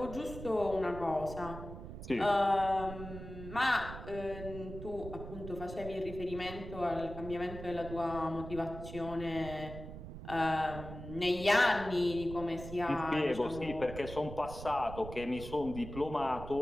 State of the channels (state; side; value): noise; right; rumble, 11 dB below the sound